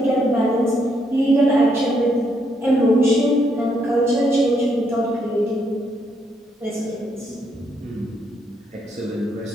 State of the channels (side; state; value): both; normal; correlation 0.75